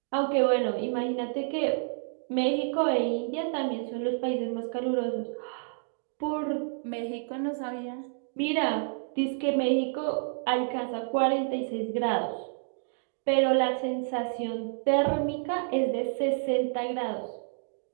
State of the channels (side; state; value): left; silent; digital silence